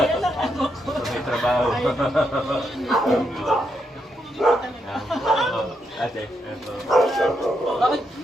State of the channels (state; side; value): normal; both; correlation 0.80